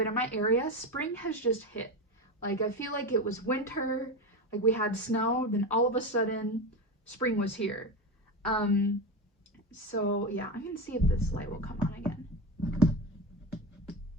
in my area, spring has just hit. I feel like it was winter, we had snow, then all of a sudden, spring was here. So yeah, I'm gonna see if this light will come on again.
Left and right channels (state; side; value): normal; both; correlation 0.19